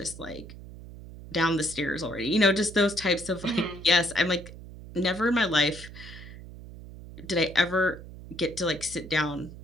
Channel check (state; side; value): noise; right; hum, 15 dB below the sound